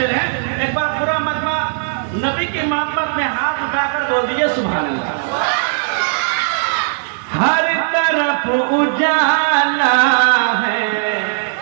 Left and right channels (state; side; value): silent; left; digital silence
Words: है। एक बार पूरा मजमा नबी की मोहब्बत में हाथ उठाकर बोल दीजिए सुभान अल्लाह। हर तरफ उजाला है,